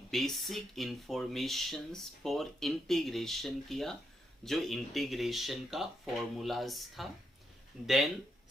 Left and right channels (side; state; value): both; normal; correlation 0.80